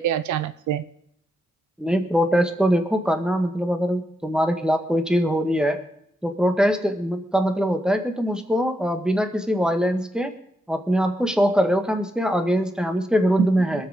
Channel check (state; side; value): normal; both; correlation 0.83